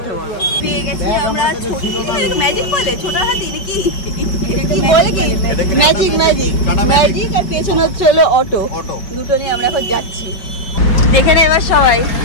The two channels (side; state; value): right; late; 5.1 ms